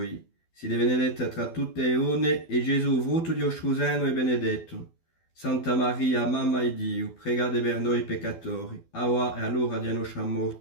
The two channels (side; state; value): right; late; 12 ms